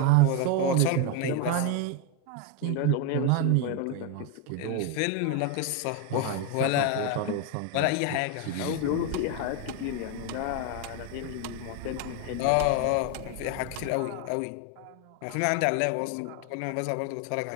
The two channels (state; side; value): different; both; correlation 0.02